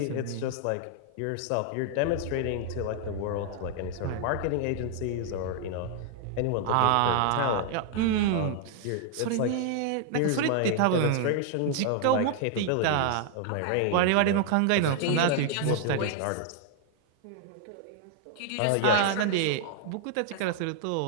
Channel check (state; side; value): different; both; correlation 0.00